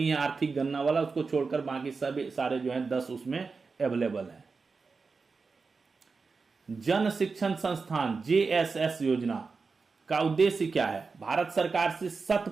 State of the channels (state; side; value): quieter; left; 4.6 dB